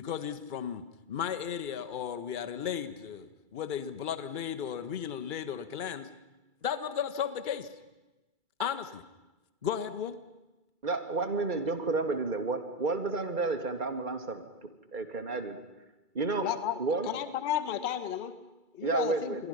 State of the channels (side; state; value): left; late; 2.3 ms